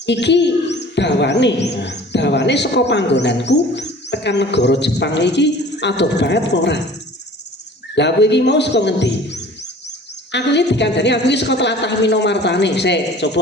iki dawane saka panggonanku tekan negara Jepang iki adoh banget ora. Lah kowe iki mau saka ngendi? Aku iki dikandani aku iki saka tlatah Minomartani. Sik,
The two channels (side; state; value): both; normal; correlation 0.46